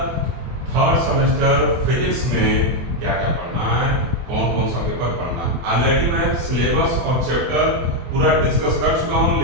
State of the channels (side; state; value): left; late; 24 ms